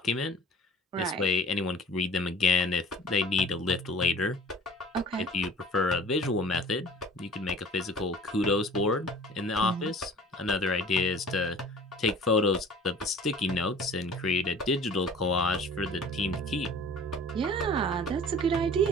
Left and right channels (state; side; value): normal; both; correlation 0.46